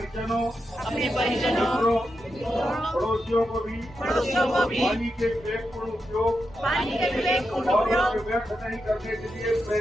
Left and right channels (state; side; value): normal; both; correlation 0.87